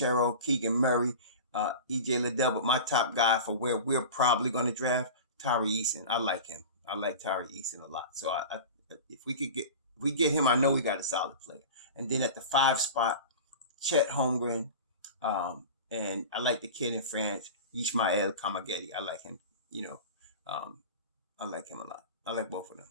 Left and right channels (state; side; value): inverted; both; correlation -0.32